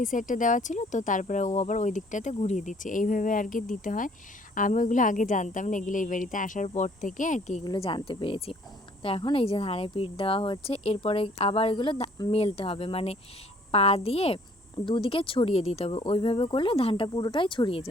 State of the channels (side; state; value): both; normal; correlation 0.59